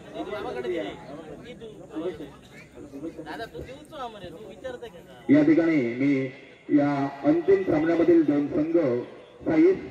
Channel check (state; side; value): identical; both; correlation 1.00